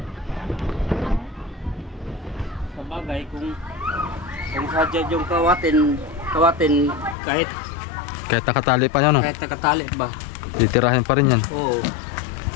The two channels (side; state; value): right; drops out; at 7.2 s